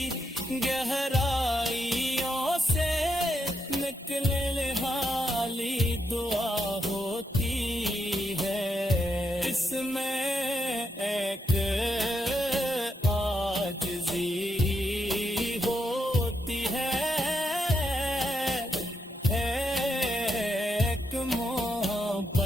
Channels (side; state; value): both; normal; correlation 0.81